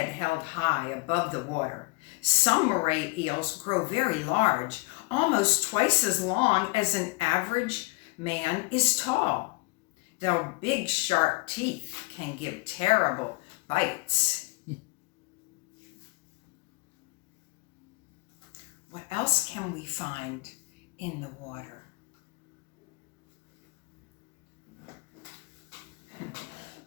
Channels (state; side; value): quieter; right; 26.5 dB